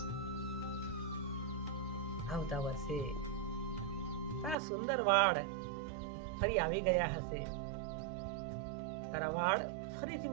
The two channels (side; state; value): left; drops out; at 4.5 s